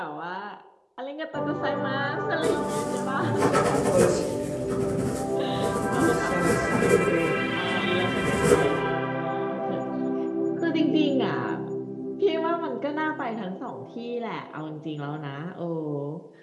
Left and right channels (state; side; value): identical; both; correlation 1.00